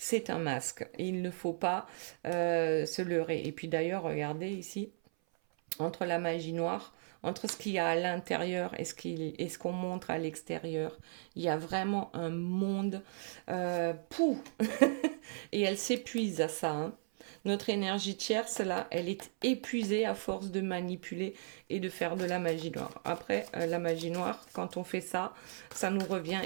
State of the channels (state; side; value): silent; left; 54 dB below the other